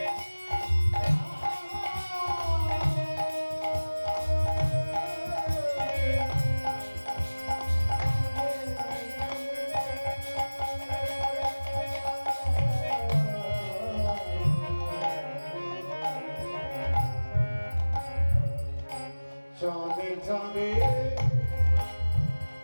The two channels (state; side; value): inverted; both; correlation -1.00